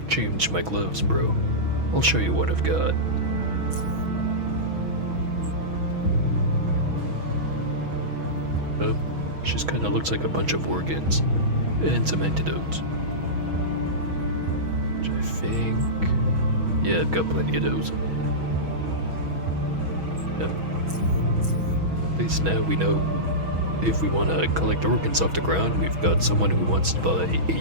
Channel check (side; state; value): left; late; 6.2 ms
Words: change my gloves, bro. I'll show you what I've got. Oh, just kinda looks like a bunch of organs. And some antidotes. Which I think... yeah, I've got plenty of those. Yep. At least now we know If we want to collect organs off the ground, we've got someone who wants to buy